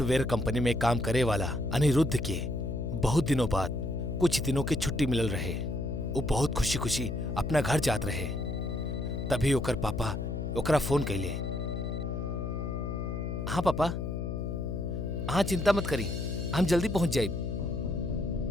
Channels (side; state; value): left; noise; hum, 3 dB below the sound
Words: company में काम करे वाला अनिरुद्ध के बहुत दिनों बाद कुछ दिनों की छुट्टी मिलल रहे। वो बहुत खुशी खुशी अपना घर जात रहे। तभी ओकर पापा ओकरा फोन कैले। हाँ पापा, हाँ चिंता मत करी, हम जल्दी पहुंच जाए।